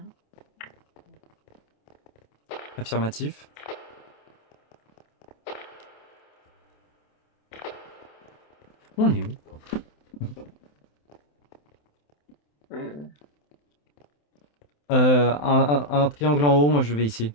Affirmatif. On est où? Un triangle en haut, moi je vais ici.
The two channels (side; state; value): right; late; 27 ms